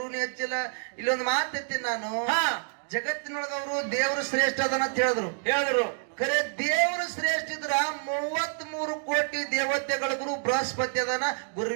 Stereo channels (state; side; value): silent; left; digital silence